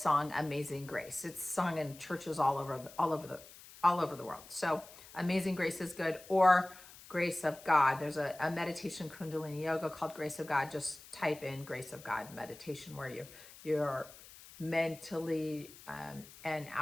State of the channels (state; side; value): noise; left; hiss, 19 dB below the sound